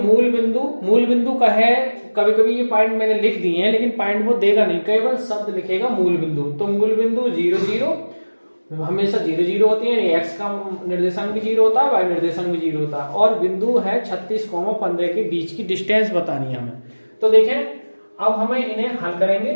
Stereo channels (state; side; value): inverted; both; correlation -1.00